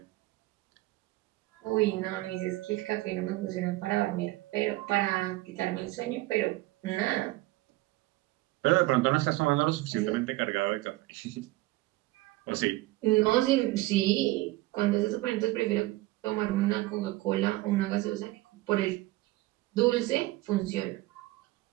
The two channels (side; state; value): left; quieter; 18.9 dB